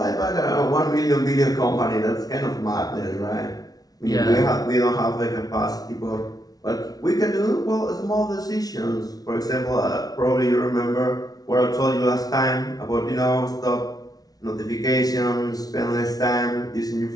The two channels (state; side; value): late; right; 0.18 ms